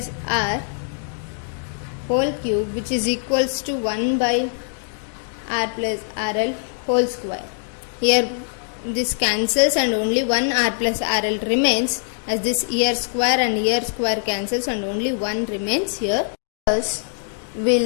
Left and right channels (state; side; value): silent; right; digital silence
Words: R whole cube, which is equals to 1 by R plus RL whole square. Here this cancels and only 1 R plus RL remains, as this here square and here square cancels and only 1 remains here. Thus,